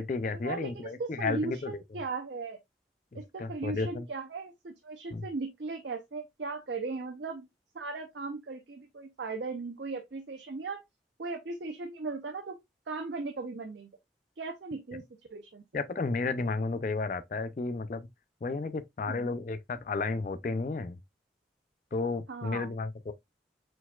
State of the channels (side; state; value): both; normal; correlation 0.34